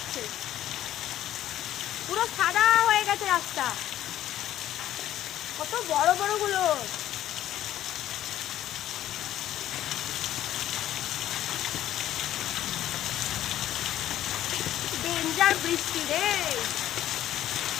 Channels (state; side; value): quieter; right; 12.6 dB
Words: পুরো সাদা হয়ে গেছে রাস্তা। কত বড় বড় গুলো। ডেঞ্জার বৃষ্টি রে।